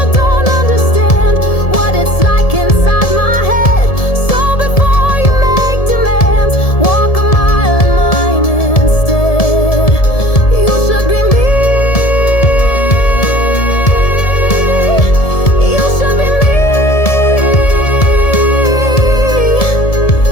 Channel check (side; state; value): right; late; 1.7 ms